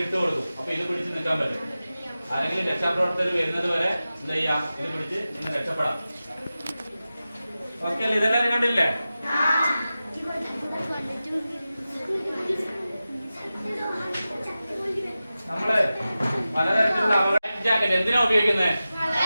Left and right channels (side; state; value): both; inverted; correlation -0.94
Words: ഇട്ട് കൊടുക്കും. അപ്പൊ ഇത് പിടിച്ച് നിൽക്കാൻ പറ്റും. ആരെങ്കിലും രക്ഷാപ്രവർത്തകർ വരുന്നത് വരെ എന്താ ചെയ്യാം? ഇത് പിടിച്ച് ഇന്ന് രക്ഷപ്പെടാം. ഓക്കെ അല്ലേ? ഇതെല്ലാവരും കണ്ടില്ലേ? നമ്മള് പലതരത്തിലുള്ള ജാക്കറ്റ് എന്തിനാ ഉപയോഗിക്കുന്നത്?